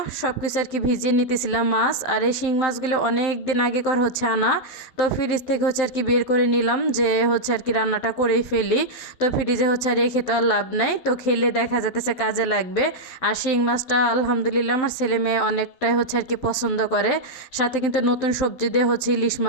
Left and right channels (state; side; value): late; right; 12 ms